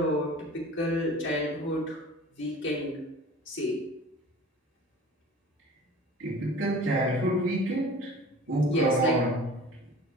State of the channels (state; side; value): normal; both; correlation 0.42